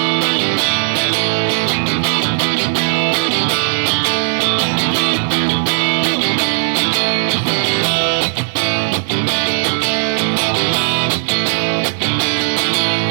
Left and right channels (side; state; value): left; silent; 66 dB below the other